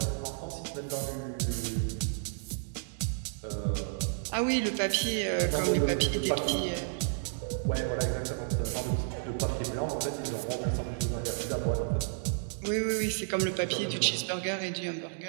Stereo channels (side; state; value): left; silent; digital silence